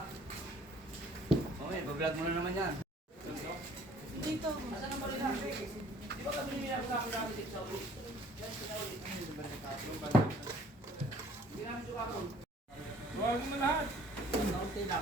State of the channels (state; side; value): normal; both; correlation 0.56